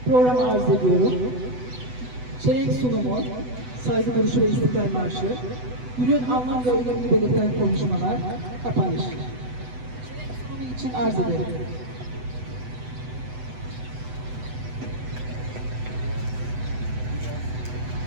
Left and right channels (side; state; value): left; late; 8.0 ms